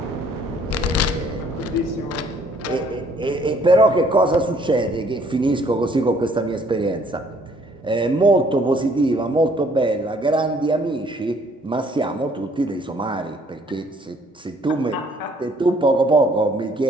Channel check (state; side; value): normal; both; correlation 0.61